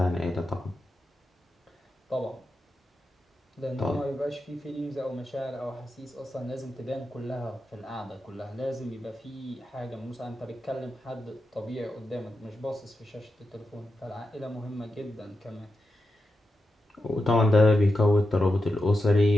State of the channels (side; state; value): both; normal; correlation 0.89